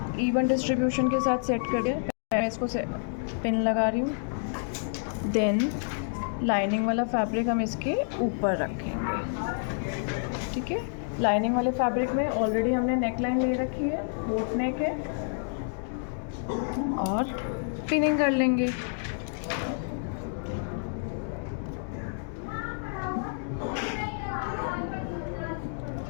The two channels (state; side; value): silent; right; digital silence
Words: इवन डिस्ट्रीब्यूशन के साथ सेट कर दिया। मैं इसको पिन लगा रही हूँ। देन लाइनिंग वाला फैब्रिक हम इसके ऊपर रखेंगे। ठीक है, लाइनिंग वाले फैब्रिक में ऑलरेडी हमने नेक लाइन ले रखी है, बोट नेक है, और पिनिंग कर लेंगे।